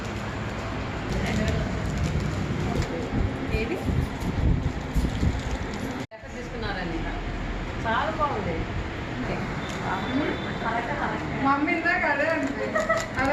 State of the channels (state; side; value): identical; both; correlation 1.00